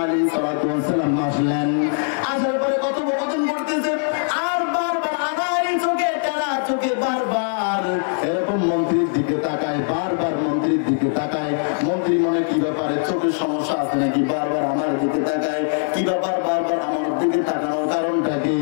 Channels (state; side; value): silent; right; digital silence